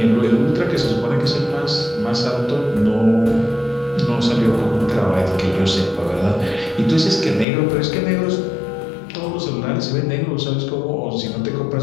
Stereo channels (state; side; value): drops out; right; at 7.5 s